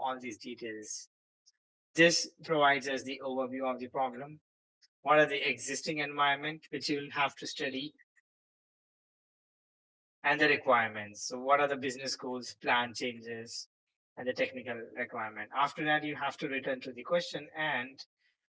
these details. This provides us the overview of the problem. What are the existing environment which you will have to study, and the requirements. So what are the business goals, plan changes, and the technical requirement. After that, you have to return to the question and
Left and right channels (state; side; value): identical; both; correlation 1.00